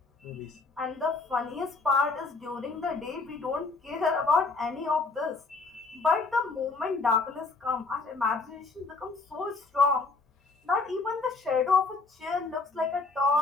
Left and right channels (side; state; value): right; quieter; 4.0 dB